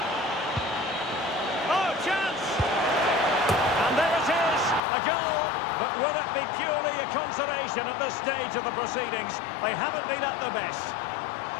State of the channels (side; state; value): right; drops out; at 4.8 s